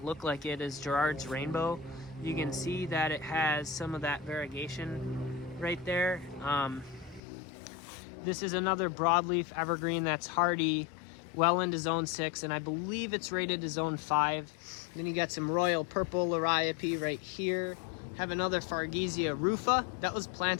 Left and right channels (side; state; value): right; drops out; at 7.2 s